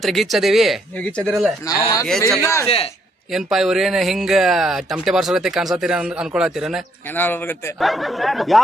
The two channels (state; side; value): normal; both; correlation 0.70